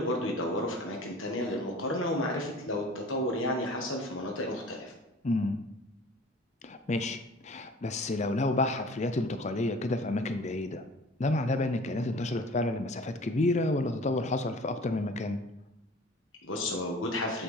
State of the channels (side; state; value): both; normal; correlation 0.44